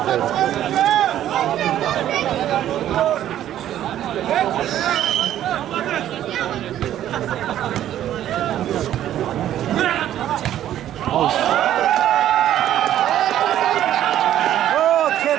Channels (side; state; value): left; quieter; 11.8 dB